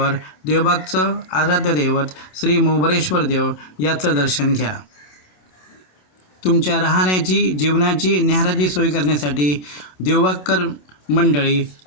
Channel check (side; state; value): right; late; 27 ms